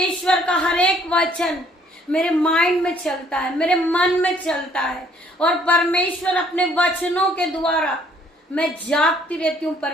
का हर एक वचन मेरे माइंड में चलता है, मेरे मन में चलता है, और परमेश्वर अपने वचनों के द्वारा मैं जागती रहती हूँ।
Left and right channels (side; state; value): both; normal; correlation 0.62